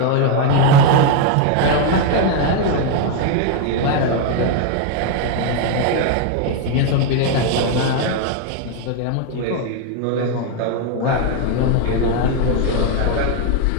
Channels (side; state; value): both; different; correlation 0.01